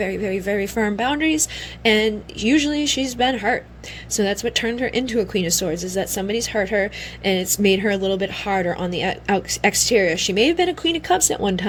very, very firm boundaries, and usually she's been hurt. So that's what turned her into a Queen of Swords, is that somebody's hurt her and it's made her a little bit harder on the exterior. She may have been a Queen of Cups at one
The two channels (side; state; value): both; identical; correlation 1.00